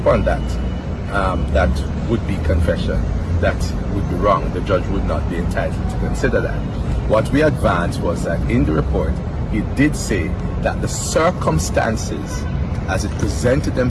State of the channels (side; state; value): both; identical; correlation 1.00